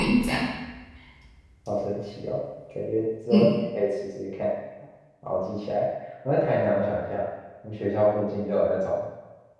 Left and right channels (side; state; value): both; identical; correlation 1.00